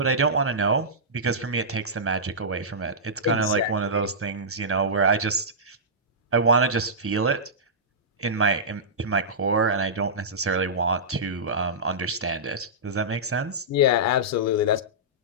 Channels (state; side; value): normal; both; correlation -0.16